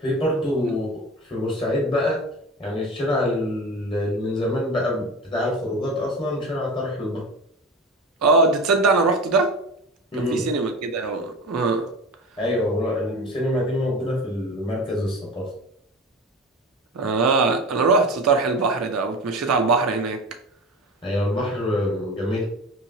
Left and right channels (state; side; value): normal; both; correlation 0.30